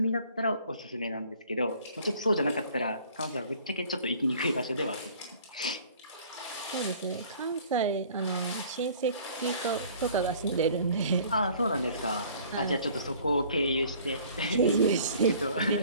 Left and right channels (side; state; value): both; inverted; correlation -0.52